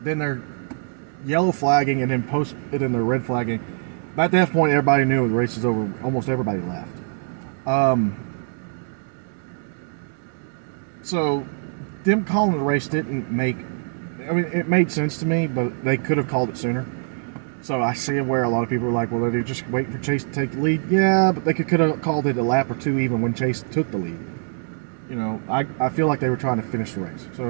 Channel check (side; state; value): left; silent; 63 dB below the other